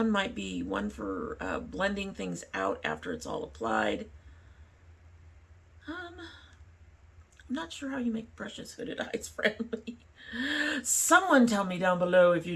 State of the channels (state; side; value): identical; both; correlation 1.00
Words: might be one for blending things out after it's all applied. I'm not sure how you make brushes hooded eyes friendly. Someone tell me down below if you